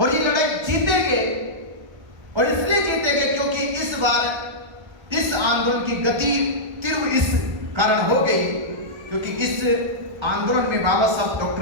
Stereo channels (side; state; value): left; late; 1.3 ms